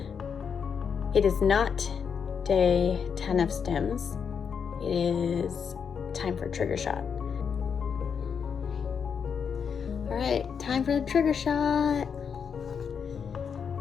It is not day 10 of STIMS. It is time for trigger shot. All right, time for the trigger shot.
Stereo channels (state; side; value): quieter; right; 6.7 dB